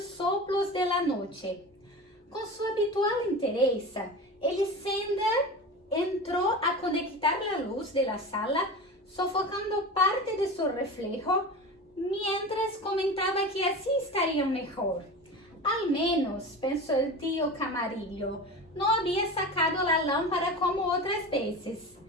soplos de la noche. Con su habitual entereza, Elisenda entró a conectar la luz de la sala, sofocando parte de su reflejo, mientras comentaba que así estaría mejor. Al menos, pensó el tío Camarillo, no había sacado la lámpara como otras veces,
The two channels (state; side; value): normal; both; correlation 0.30